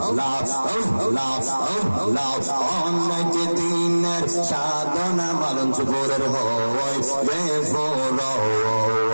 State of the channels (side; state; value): both; inverted; correlation -1.00